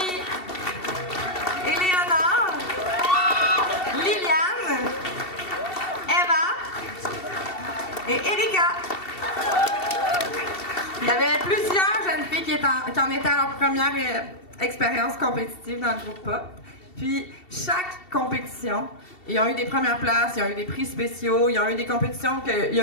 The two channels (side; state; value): right; late; 2.7 ms